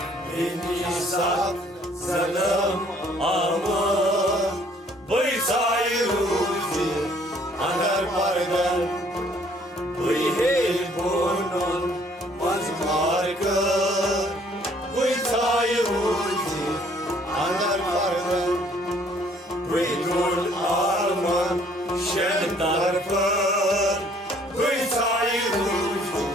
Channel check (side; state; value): both; normal; correlation 0.61